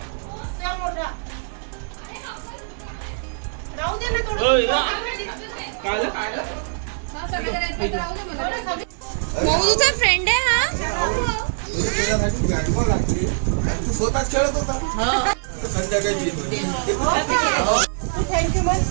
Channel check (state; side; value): silent; left; digital silence